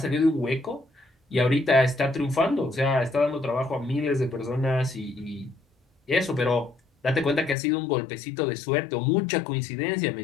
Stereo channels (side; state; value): right; drops out; at 7.6 s